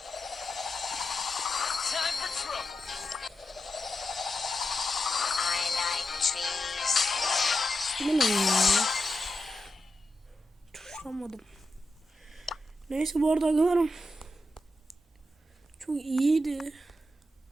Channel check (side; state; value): both; normal; correlation 0.87